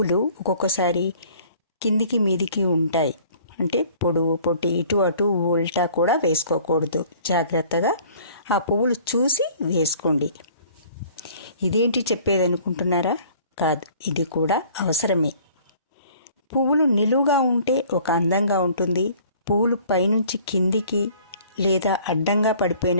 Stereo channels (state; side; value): inverted; both; correlation -0.53